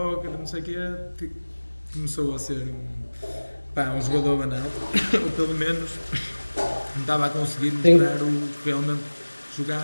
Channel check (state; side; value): inverted; both; correlation -1.00